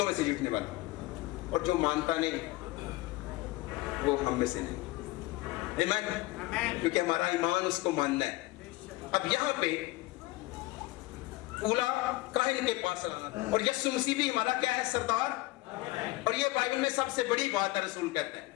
में से जीतने वाला। और जो मानता नहीं वो हम में से नहीं। आमीन। क्योंकि हमारा ईमान उसको मानना है। अब यहाँ पे ऊला काहिन के पास लाना था, और यीशु मसीह भी हमारा क्या है? सरदार। और ये बाइबल में सबसे बड़ी बात है, रसूल कहते हैं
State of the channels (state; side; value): quieter; right; 20.0 dB